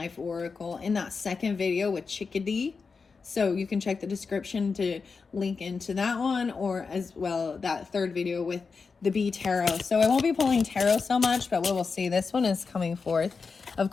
oracle in that second video with Chickadee. So you can check the description to link into that one, or as well that third video with the Bee Tarot. So I won't be pulling tarot so much, but we will see. This one is coming forth. Of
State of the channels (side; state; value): right; quieter; 4.9 dB